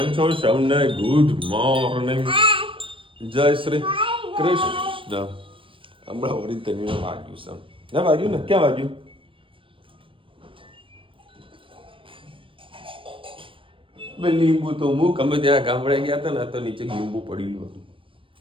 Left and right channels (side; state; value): left; late; 0.25 ms